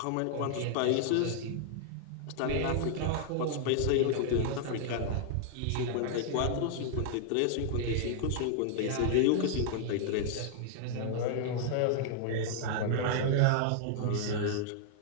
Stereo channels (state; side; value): different; both; correlation -0.01